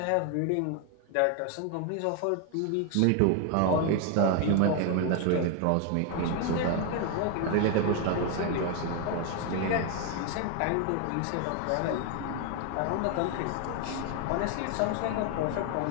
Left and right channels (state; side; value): different; both; correlation 0.01